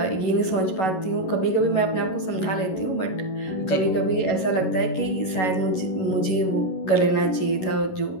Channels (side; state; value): right; late; 11 ms